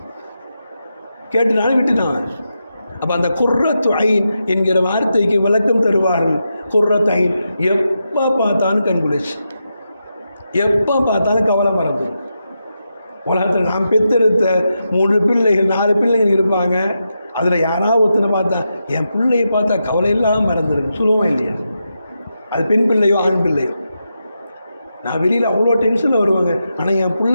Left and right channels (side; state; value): both; inverted; correlation -0.86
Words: அப்போ அந்த குர்ரத்து ஐன் என்கிற வார்த்தைக்கு விளக்கம் தருவார்கள். குர்ரத்து ஐன், எப்போ பார்த்தாலும் கண்குளிச்சு, எப்போ பார்த்தாலும் கவலை மறந்துடும். உலகத்தில் நாம் பெற்றெடுத்த 3 பிள்ளைகள் 4 பிள்ளைகள் இருப்பாங்க. அதில் யாராவது ஒருத்தனை பார்த்தா என் பிள்ளையை பார்த்தா கவலை இல்லாமல் மறந்துடும், சொல்லுவோம் இல்லையா? அது பெண் பிள்ளையோ ஆண் பிள்ளையோ. நான் வெளியில் அவ்வளோ டென்ஷனில் வருவாங்க, ஆனால் என்